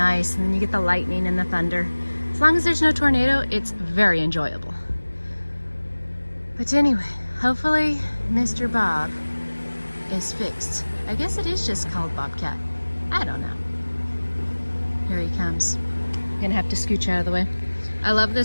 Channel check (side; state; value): both; inverted; correlation -1.00